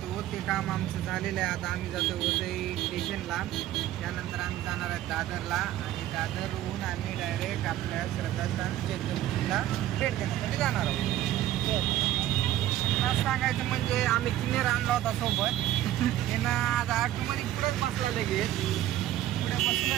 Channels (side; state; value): left; quieter; 13.3 dB